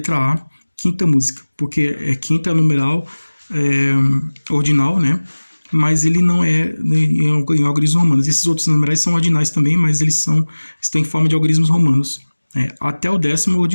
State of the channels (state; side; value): inverted; both; correlation -1.00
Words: A, quinta música, porque quinta é numeral ordinal, né? Mas ele não é em algarismos romanos. Esses outros numerais são ordinais também, mas eles estão em forma de algarismos romanos. Até o 10º